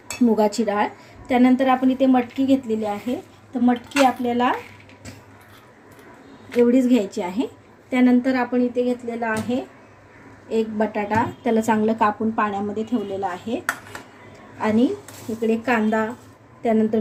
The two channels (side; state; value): both; identical; correlation 1.00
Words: मुगाची डाळ. त्यानंतर आपण इथे मटकी घेतलेली आहे. तर मटकी आपल्याला एवढीच घ्यायची आहे. त्यानंतर आपण इथे घेतलेला आहे एक बटाटा, त्याला चांगलं कापून पाण्यामध्ये ठेवलेला आहे. आणि इकडे कांदा, त्यानंतर